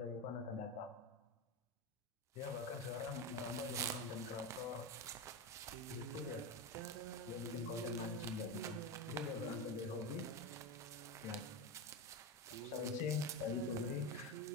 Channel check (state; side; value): normal; both; correlation 0.17